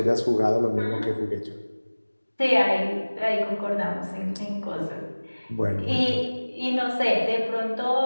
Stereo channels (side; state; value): both; inverted; correlation -1.00